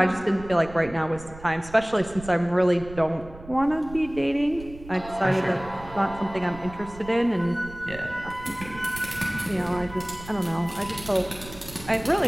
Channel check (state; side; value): noise; right; rumble, 16 dB below the sound